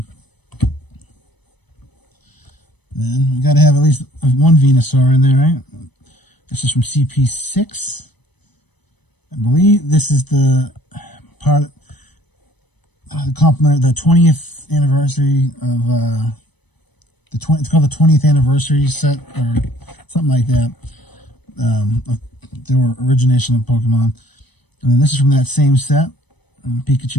Then we got to have at least one Venusaur in there, right? This is from CP6. I believe this is the part the compliment, the 20th anniversary of it's called the 20th anniversary set or something like that. Their origination of Pokemon, and then this is from that same set,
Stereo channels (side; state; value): right; late; 0.99 ms